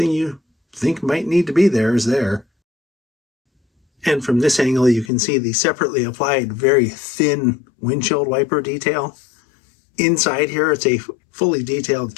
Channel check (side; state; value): right; drops out; at 5.1 s